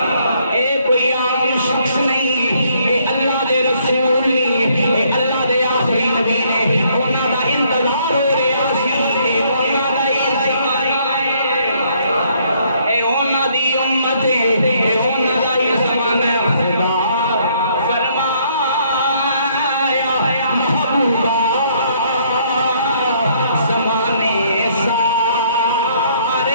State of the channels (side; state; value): both; inverted; correlation -0.67